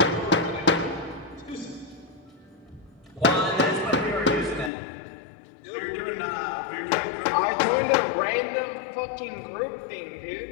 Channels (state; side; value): drops out; right; at 4.7 s